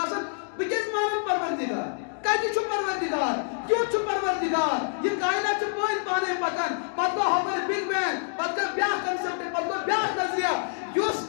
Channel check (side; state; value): right; silent; 60 dB below the other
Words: آسان بہٕ کیٛازِ مانن پروردِگار کتہِ چھُ پروردِگار کیُتھ چھُ پروردِگار یہِ کائنات چھُ پٲنۍ پانے پکان پتہٕ گوٚو ہۄپٲرۍ بِگ بینگ پتہٕ گوٚو بیاکھ کنسپٹ پتہٕ گوٚو بیاکھ نظریہ یُس